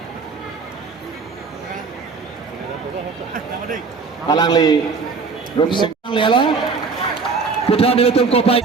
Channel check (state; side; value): quieter; left; 4.8 dB